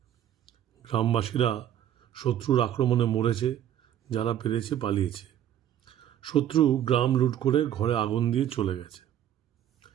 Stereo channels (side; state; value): left; quieter; 10.8 dB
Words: গ্রামবাসীরা শত্রুর আক্রমণে মরেছে, যারা পেরেছে পালিয়েছে। শত্রু গ্রাম লুট করে ঘরে আগুন দিয়ে চলে গেছে।